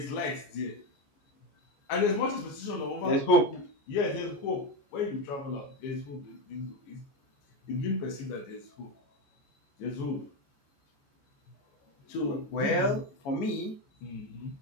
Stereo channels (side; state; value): right; late; 14 ms